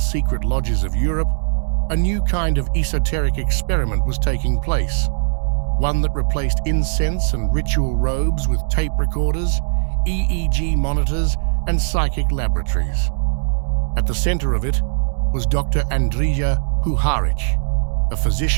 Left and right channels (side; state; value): left; silent; digital silence